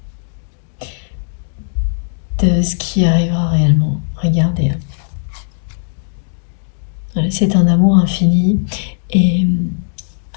de ce qui arrivera réellement. Regardez. C'est un amour infini et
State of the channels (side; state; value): right; silent; digital silence